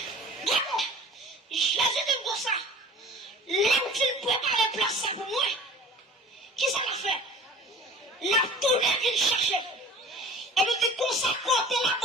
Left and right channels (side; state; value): both; normal; correlation 0.44